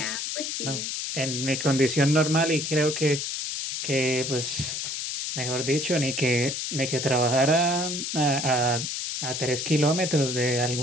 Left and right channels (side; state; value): left; noise; hiss, 3 dB below the sound